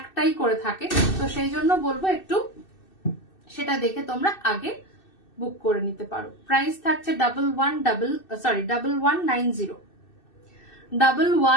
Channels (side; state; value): right; late; 2.6 ms